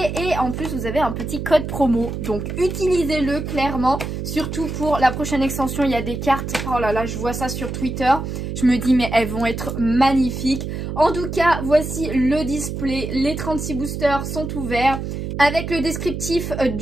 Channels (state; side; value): noise; right; hum, 5 dB below the sound